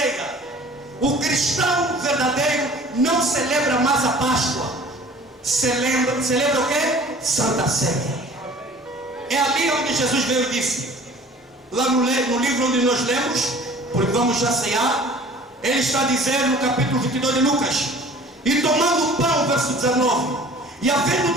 O cristão verdadeiro não celebra mais a Páscoa, celebra o que? Santa Ceia. É ali onde Jesus veio e disse, lá no livro onde nós lemos, porque vamos já ceiar, ele está dizendo no capítulo 22 de Lucas: e tomando o pão, verso 19, e havendo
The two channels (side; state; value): both; normal; correlation 0.47